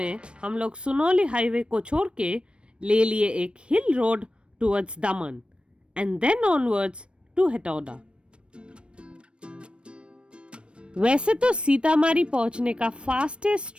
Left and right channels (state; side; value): late; left; 0.058 ms